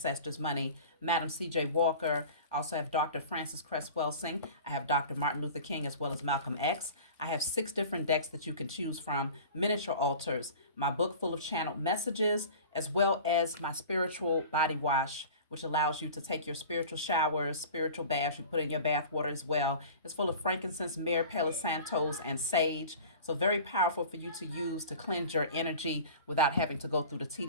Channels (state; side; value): inverted; both; correlation -0.39